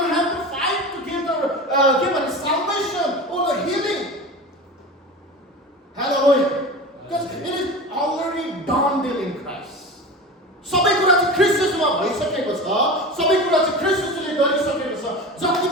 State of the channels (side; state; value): both; normal; correlation 0.30